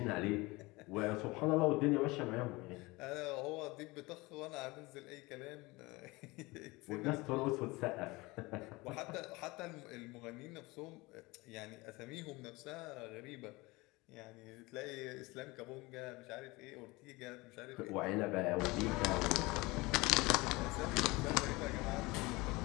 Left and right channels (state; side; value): quieter; right; 22.9 dB